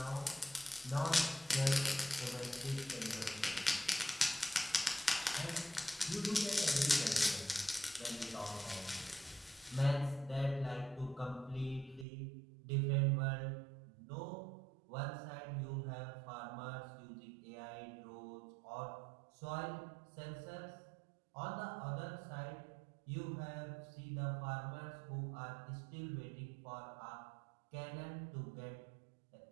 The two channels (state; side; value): drops out; left; at 12.1 s